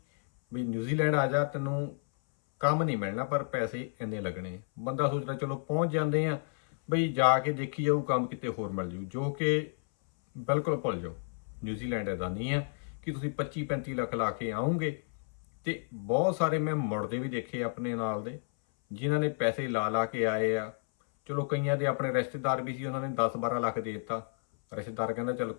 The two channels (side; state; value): right; silent; 57 dB below the other